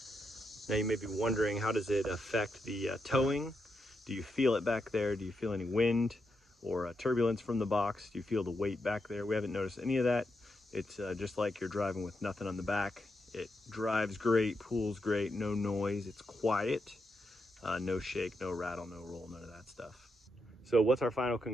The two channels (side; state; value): both; normal; correlation 0.84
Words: Now you may be wondering, how does it affect the towing? Do you feel it back there? Do you feel any wind or turbulence from the box? Do you feel the weight back there? We haven't noticed any of that. It's just like you're driving with nothing on the back. It drives great, pulls great, no noise, it's quiet, no shake, no rattle, no roll, none of that stuff. So what's our final